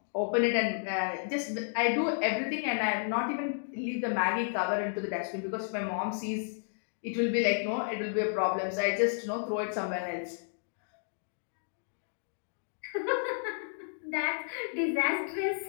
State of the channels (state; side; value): silent; right; digital silence